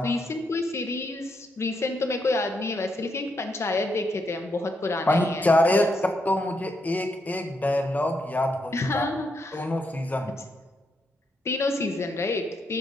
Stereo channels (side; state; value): both; normal; correlation 0.79